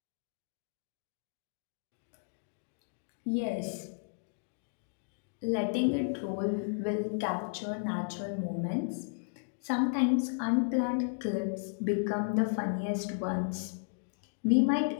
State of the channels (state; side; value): silent; right; digital silence